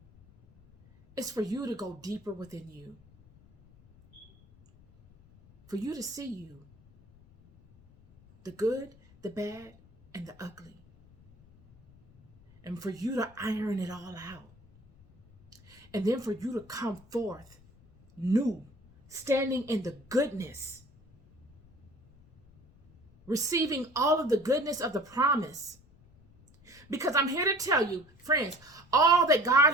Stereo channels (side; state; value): left; noise; rumble, 26 dB below the sound